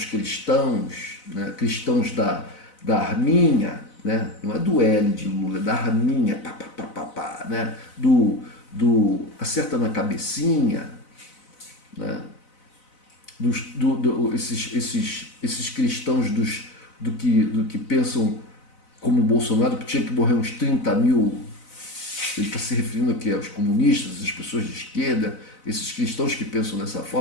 cristãos, né, cristãos da Arminha, né, não é do L de Lula, é da Arminha, né, do acerta na cabecinha, né, esses cristãos do que pensam como o Bolsonaro, que tinha que morrer uns 30 mil. Ele está se referindo aqui aos comunistas, às pessoas de esquerda, esses cristãos que pensam dessa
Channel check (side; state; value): right; late; 4.0 ms